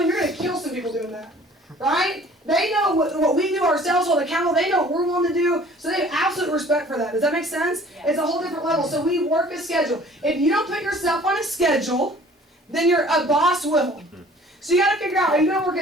them, you're going to kill some people doing that. Right? They know what we do ourselves, hold accountable. They know what we're willing to do. So they have absolute respect for that. Does that make sense? Yeah. It's a whole different level. So we work a schedule. If you don't put yourself on a schedule, then a boss will. So you got to figure out, are you going to work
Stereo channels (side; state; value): both; normal; correlation 0.51